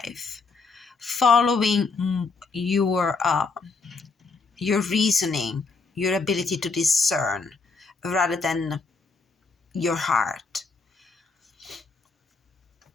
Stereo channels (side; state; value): right; quieter; 4.3 dB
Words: following your reasoning, your ability to discern, rather than your heart.